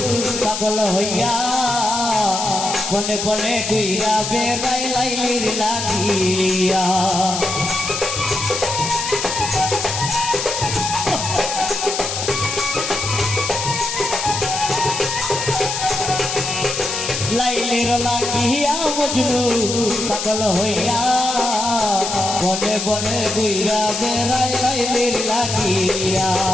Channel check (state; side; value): noise; left; hiss, 3 dB below the sound